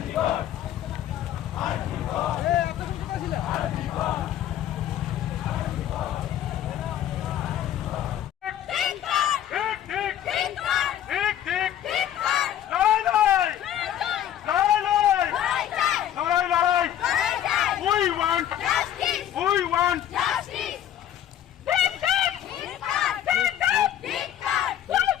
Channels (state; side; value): quieter; right; 11.2 dB